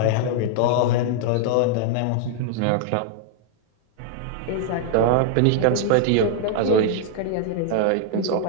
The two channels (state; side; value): different; both; correlation -0.01